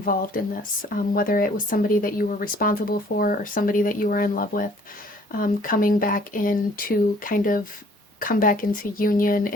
in this, whether it was somebody that you were responsible for or somebody that you were in love with, coming back in to kind of come back into union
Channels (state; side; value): normal; both; correlation 0.57